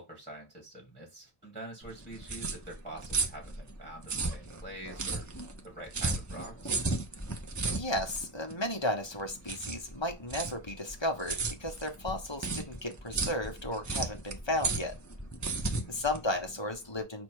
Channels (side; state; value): right; late; 1.2 ms